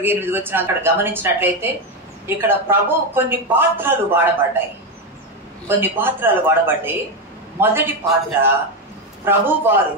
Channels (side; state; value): both; normal; correlation 0.10